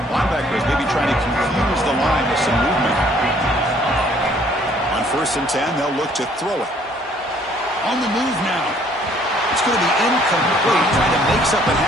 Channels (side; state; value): both; normal; correlation 0.61